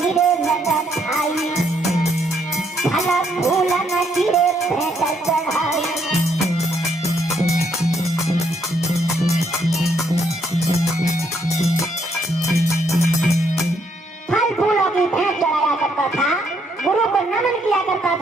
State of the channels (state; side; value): normal; both; correlation 0.72